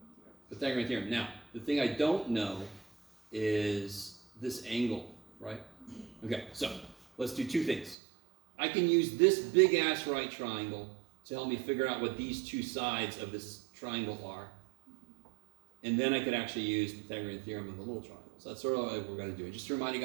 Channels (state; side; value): drops out; left; at 8.0 s